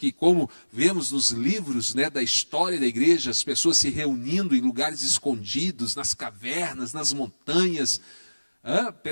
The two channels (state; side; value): inverted; both; correlation -1.00